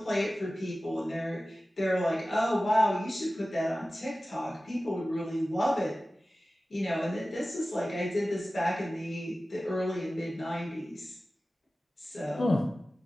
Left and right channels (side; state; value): both; normal; correlation 0.96